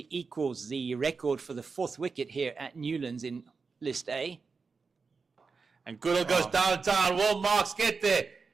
equals the record for the 4th wicket here at Newlands in List A. And Goodall goes downtown. Will Marks get there?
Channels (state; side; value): quieter; left; 4.8 dB